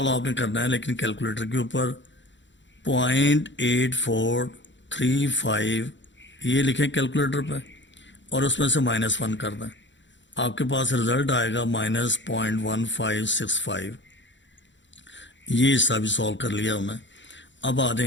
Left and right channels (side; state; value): right; late; 0.54 ms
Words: آپ نے کرنا ہے لیکن کیلکولیٹر کے اوپر 0.8435 یہ لکھیں کیلکولیٹر پہ, اور اس میں سے -1 کر دیں. آپ کے پاس رزلٹ آئے گا -0.1565. یہ حصہ بھی سولو کر لیا ہم نے. اب آ